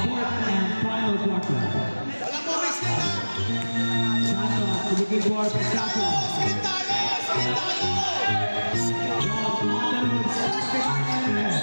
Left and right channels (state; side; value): inverted; both; correlation -1.00